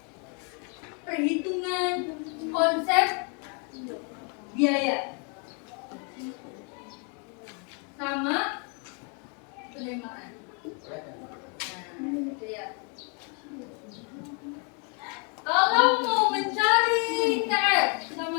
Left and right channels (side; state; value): right; quieter; 37.2 dB